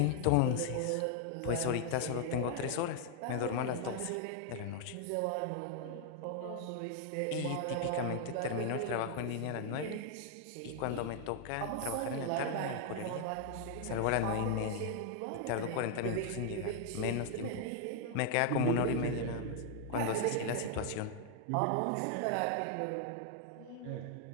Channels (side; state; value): both; different; correlation 0.00